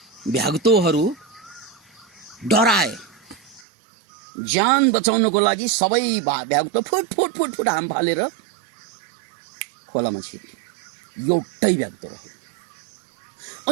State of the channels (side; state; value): left; drops out; at 3.7 s